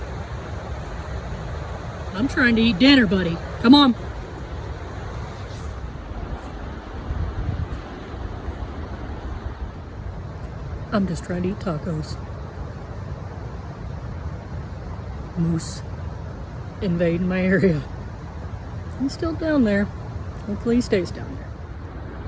I'm trying to eat dinner, buddy. Come on. I'm just trying to eat tacos. Moose invading my area. He's still down there. Hopefully he stays down there.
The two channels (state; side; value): identical; both; correlation 1.00